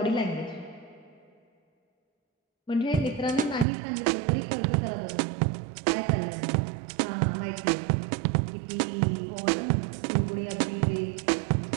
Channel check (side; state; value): left; drops out; at 3.7 s